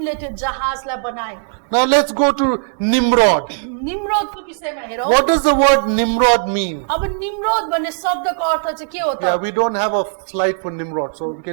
त्यो जहाजलाई बनाए। Now let's go to Nimrod. निम्रोदको विषयमा हेरौँ। What does the word Nimrod mean? अब निम्रोद भन्ने शब्दको अर्थ चाहिँ के हो Yeah, त? we don't have a slide for Nimrod, so we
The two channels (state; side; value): silent; left; 67 dB below the other